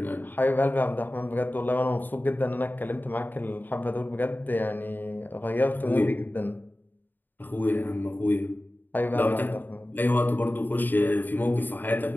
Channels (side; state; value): right; late; 0.090 ms